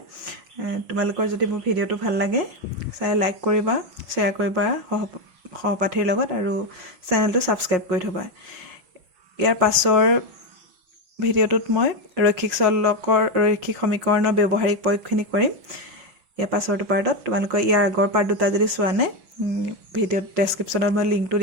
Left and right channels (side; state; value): left; late; 5.5 ms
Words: তোমালোকৰ যদি মোৰ ভিডিওটো ভাল লাগে চাই লাইক কৰিবা শেয়াৰ কৰিবা সহপাঠীৰ লগত আৰু চেনেলটো সাবস্ক্ৰাইব কৰি থবা ইয়াৰ পাছৰ ভিডিওটোত মই ৰৈখিক সমীকৰণৰ ব্যৱহাৰিক প্ৰয়োগখিনি কৰিম ইয়াৰ পাছৰটো পাৰ্টত তোমালোকৰ ইয়াৰ আগৰ পাৰ্ট দুটা যদি চোৱা নাই ভিডিও ডেসক্ৰিপচনত মই লিংকটো